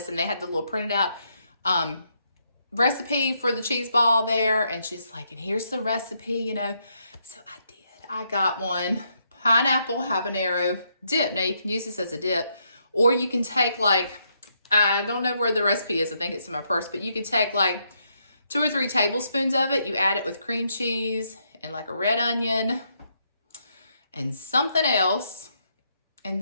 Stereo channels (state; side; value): inverted; both; correlation -0.77